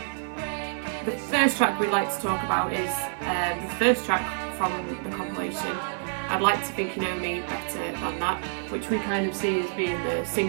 The first track we'd like to talk about is the first track from the compilation, I'd Like to Think You Know Me Better Than That, which we kind of see as being the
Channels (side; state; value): left; silent; digital silence